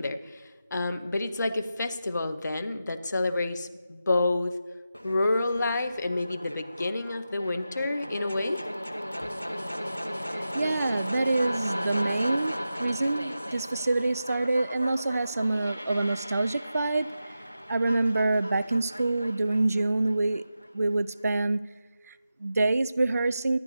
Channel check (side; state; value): both; inverted; correlation -0.91